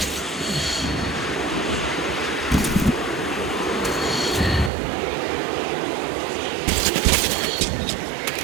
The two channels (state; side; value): drops out; left; at 4.7 s